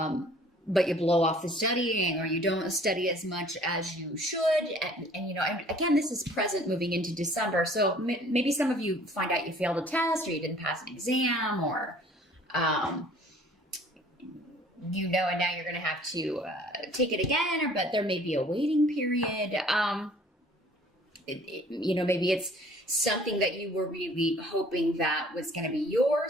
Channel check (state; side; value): normal; both; correlation 0.53